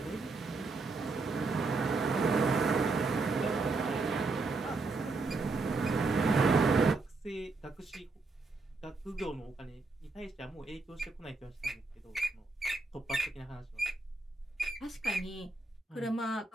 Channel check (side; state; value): left; quieter; 3.6 dB